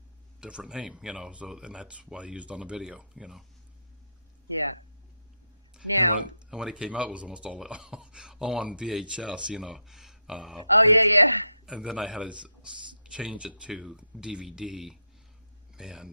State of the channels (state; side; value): inverted; both; correlation -0.79